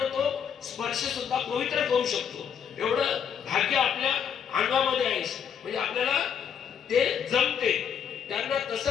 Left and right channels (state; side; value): quieter; right; 7.9 dB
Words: तो स्पर्श सुद्धा पवित्र करू शकतो. एवढं भाग्य आपल्या अंगामध्ये आहे. म्हणजे आपल्याला ते जमते. त्यांना